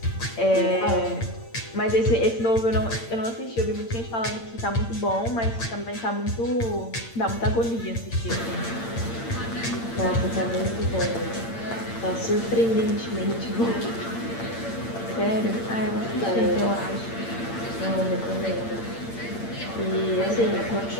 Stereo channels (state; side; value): late; right; 8.8 ms